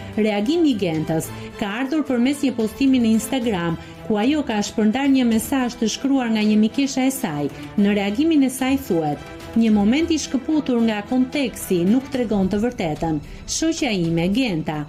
Reagimi i Gentës ka ardhur përmes një postimi në Instagram, ku ajo ka shpërndar një mesazh të shkruar nga një mikesha e saj. Në reagimin e saj thuhet: "Një moment i shkëputur nga konteksti nuk tregon të vërtetën. Shoqja ime, Genta,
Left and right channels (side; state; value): both; identical; correlation 1.00